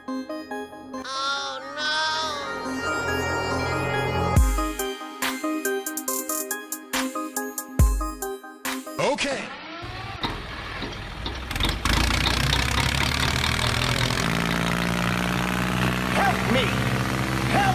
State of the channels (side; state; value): both; identical; correlation 1.00